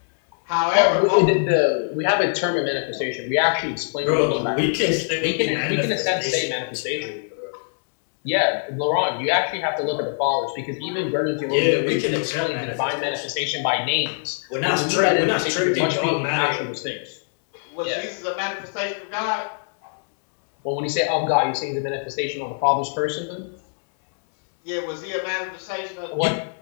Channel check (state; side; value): silent; right; 64 dB below the other